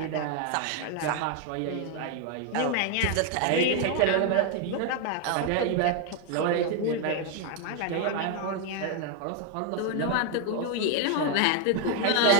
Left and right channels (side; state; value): both; different; correlation 0.01